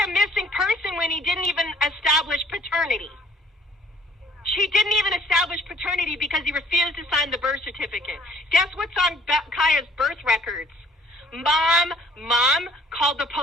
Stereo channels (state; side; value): normal; both; correlation 0.56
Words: a missing person when he didn't even establish paternity? She didn't even establish paternity because he refused to sign the birth certificate. Guess what's on Kaya's birth records? Mom called the